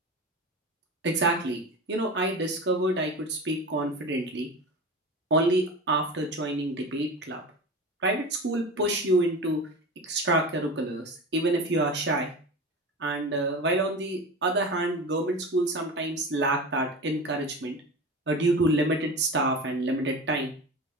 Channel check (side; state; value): both; normal; correlation 0.29